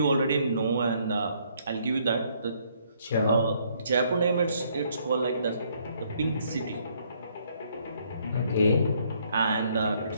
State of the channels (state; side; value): inverted; both; correlation -0.68